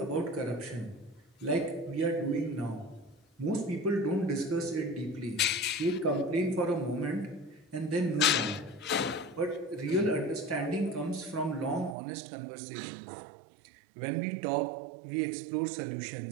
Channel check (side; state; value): left; drops out; at 12.0 s